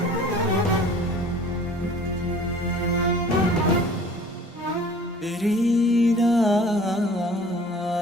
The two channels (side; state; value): both; normal; correlation 0.48